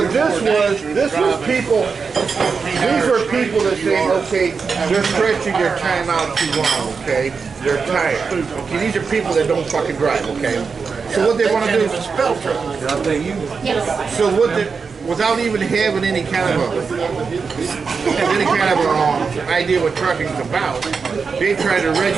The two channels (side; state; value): left; quieter; 5.2 dB